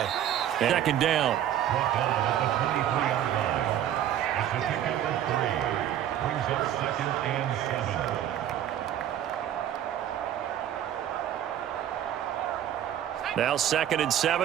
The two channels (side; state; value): left; quieter; 10.9 dB